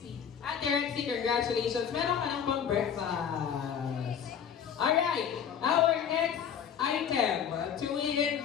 Ate Rexy, congratulations. Meron ka ng pang breakfast. Alright. Our next item.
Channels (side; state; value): right; quieter; 8.1 dB